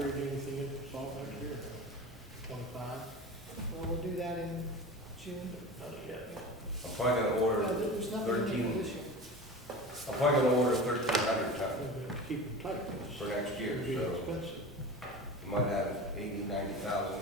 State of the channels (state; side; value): normal; both; correlation 0.32